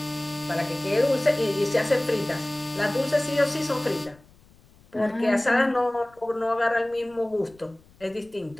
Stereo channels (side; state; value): left; noise; rumble, 28 dB below the sound